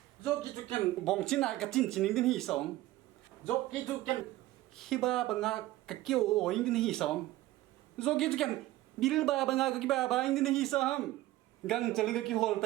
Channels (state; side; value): quieter; left; 16.4 dB